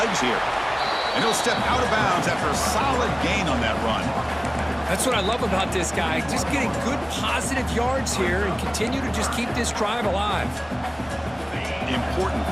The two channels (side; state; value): right; noise; hum, 26 dB below the sound